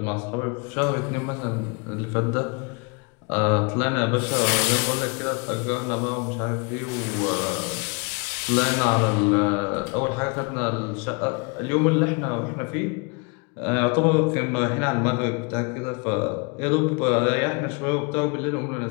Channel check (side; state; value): right; quieter; 32.8 dB